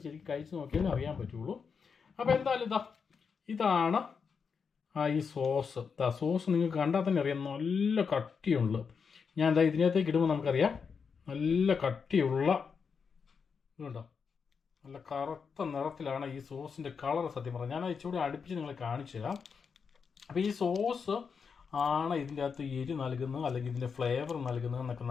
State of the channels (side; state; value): right; quieter; 5.9 dB